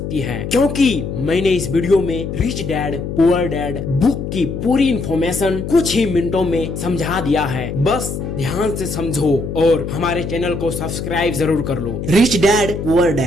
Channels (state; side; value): noise; left; hum, 5 dB below the sound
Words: है, क्योंकि मैंने इस वीडियो में rich Dad Poor dad book की पूरी इन्फॉर्मेशन कुछ ही मिनटों में समझा दिया है। बस ध्यान से समझो और हमारे चैनल को सब्सक्राइब जरूर कर लो। Rich Dad Poor